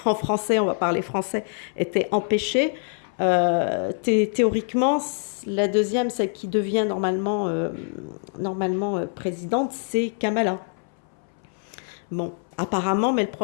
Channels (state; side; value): silent; right; 62 dB below the other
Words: en français, on va parler français, était empêché. Théoriquement, la deuxième, celle qui devient normalement présidente, c'est Kamala. Bon, apparemment, mais le